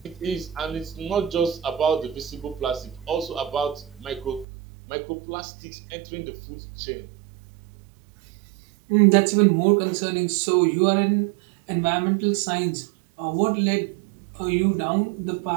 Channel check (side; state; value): left; drops out; at 4.5 s